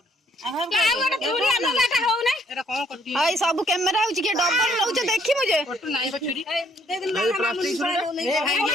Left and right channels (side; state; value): both; normal; correlation 0.66